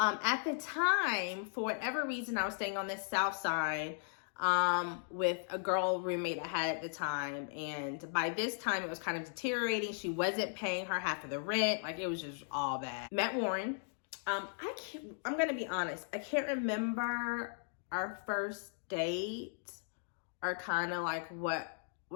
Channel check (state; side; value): silent; right; digital silence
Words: the time, for whatever reason, I was staying on this south side with a girl roommate I had at the time. And by this time, it was kind of deteriorating. She wasn't paying her half of the rent. Like, it was just all bad. Met Warren. I'm gonna be honest. I can't remember our first date or kind of like